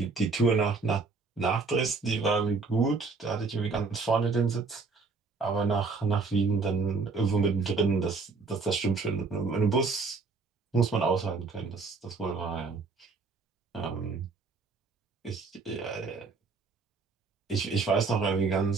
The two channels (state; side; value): quieter; left; 4.4 dB